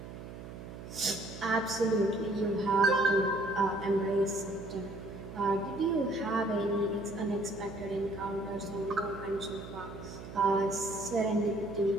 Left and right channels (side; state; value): right; noise; hum, 12 dB below the sound